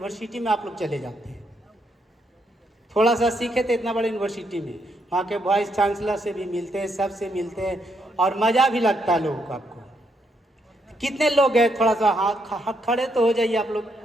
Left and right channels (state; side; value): normal; both; correlation 0.76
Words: में आप लोग चले जाते हैं। थोड़ा सा सीखे थे इतना बड़े यूनिवर्सिटी में, वहाँ के वाइस चांसलर से भी मिलते हैं, सबसे मिलते हैं और मज़ा भी लगता है लोगों को। आपको कितने लोग गए? थोड़ा सा हाथ खड़े तो हो जाइए आप लोग।